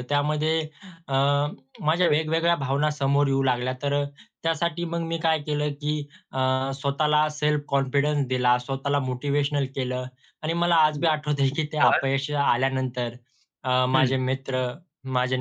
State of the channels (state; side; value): identical; both; correlation 1.00